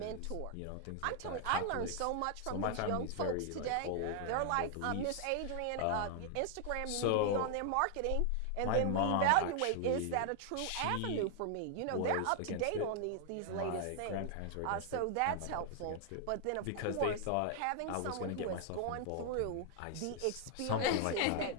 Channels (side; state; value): both; different; correlation 0.00